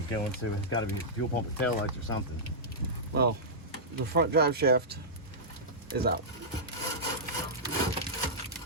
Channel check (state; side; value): normal; both; correlation -0.12